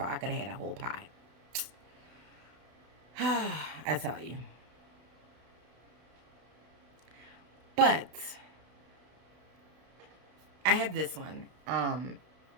I could have had a whole pie. I tell you. But I have this one, and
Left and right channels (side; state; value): left; late; 32 ms